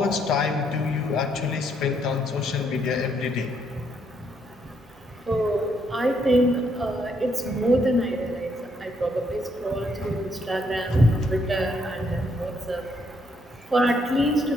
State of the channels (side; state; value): both; normal; correlation 0.73